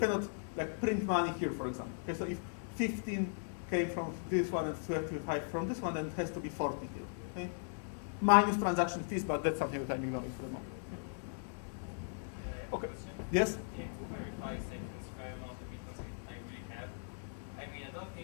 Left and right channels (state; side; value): silent; right; digital silence